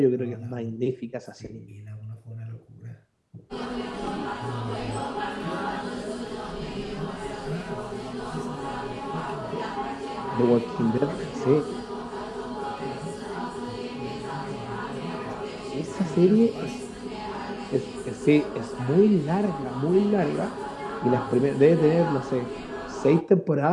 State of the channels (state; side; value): identical; both; correlation 1.00